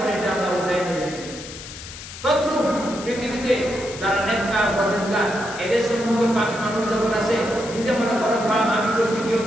এটা আমরা উঠাই নিলাম। তদ্রূপ পৃথিবীতে যারা নেককার পরহেজগার এদের সম্মুখে পাপী মানুষ যখন আসে, নিজে মনে করে পাপ আমি করছি, কেউ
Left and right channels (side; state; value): left; noise; hiss, 13 dB below the sound